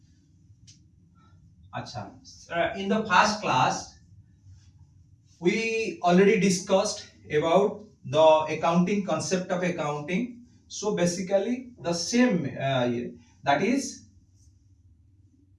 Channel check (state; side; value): identical; both; correlation 1.00